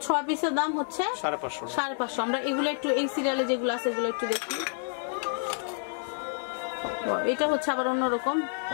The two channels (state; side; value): silent; right; digital silence